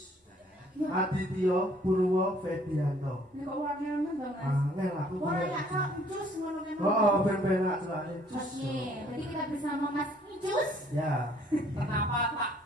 Adityo Purwo Fedianto. Ini kok warnanya to Mas? Angel aku. Ora ya kok Ucus ngono kan. Oh, ben-ben nak celane Ucus. Oke, berarti kita bersama Mas Ucus. Ya. Kenapa tak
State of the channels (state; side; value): normal; both; correlation 0.61